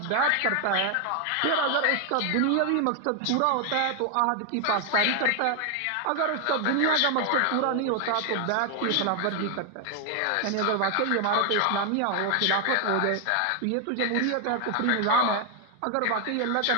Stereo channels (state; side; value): different; both; correlation 0.00